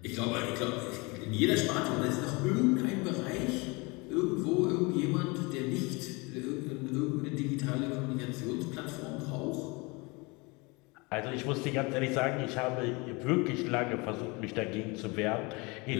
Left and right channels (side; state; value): right; quieter; 27.1 dB